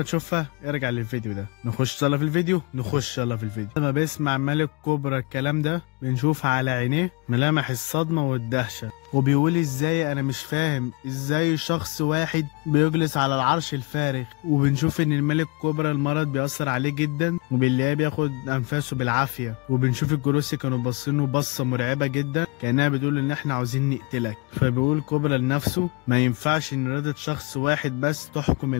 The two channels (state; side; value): quieter; right; 28.6 dB